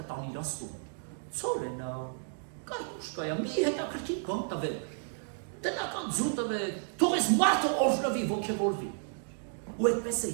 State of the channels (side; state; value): left; silent; digital silence